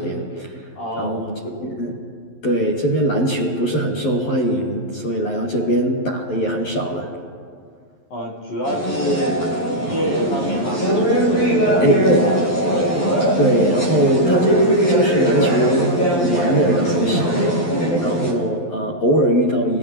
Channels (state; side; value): late; right; 11 ms